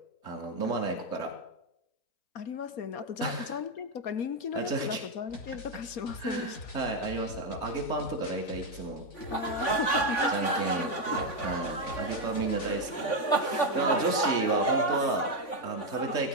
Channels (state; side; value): late; right; 3.5 ms